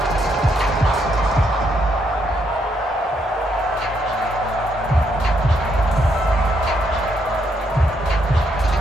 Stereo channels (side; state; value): both; normal; correlation 0.75